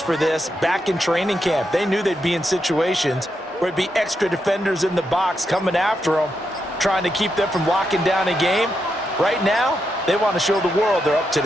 for this back in training camp. They knew they'd be in situations where it'd be extra defenders in the box coming after them, trying to keep them from locking down a game. Right now, they want to show the world they're up to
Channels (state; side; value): normal; both; correlation 0.83